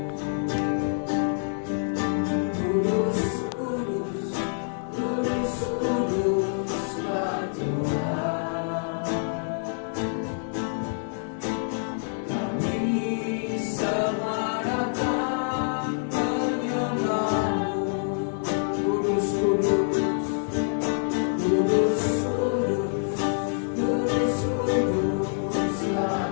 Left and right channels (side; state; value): right; silent; digital silence